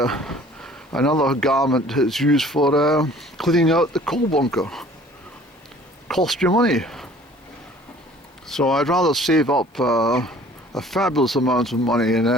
another garment that's used for cleaning out the coal bunker. Cost you money. So I'd rather save up a fabulous amount of money and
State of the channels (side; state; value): both; normal; correlation 0.52